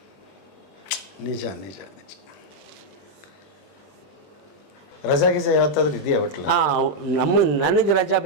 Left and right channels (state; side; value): late; right; 20 ms